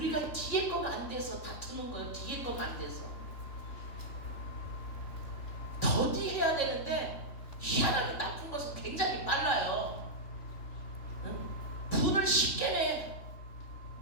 뒤에 거가 안 돼서 다투는 거예요. 뒤에 거가 안 돼서 더디해야 되는데 희한하게 나쁜 것은 굉장히 빨라요. 분을 쉽게 내.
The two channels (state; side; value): late; right; 3.3 ms